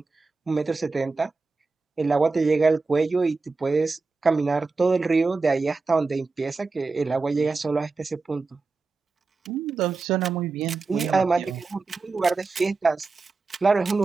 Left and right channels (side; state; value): left; quieter; 4.0 dB